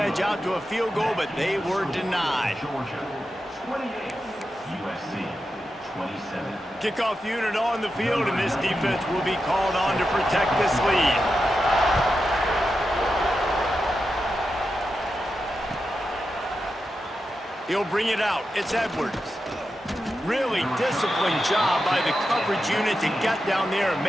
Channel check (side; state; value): both; normal; correlation 0.89